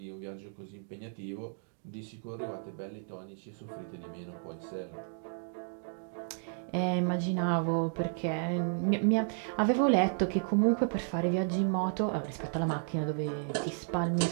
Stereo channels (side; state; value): left; silent; digital silence